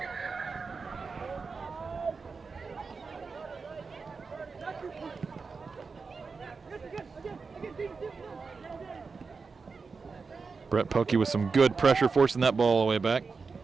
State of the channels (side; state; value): left; quieter; 4.7 dB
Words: Brett Pelkey with some good pressure, forcing that ball all the way back.